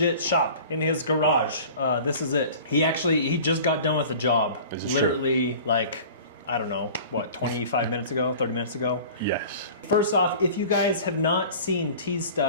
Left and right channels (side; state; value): both; inverted; correlation -0.42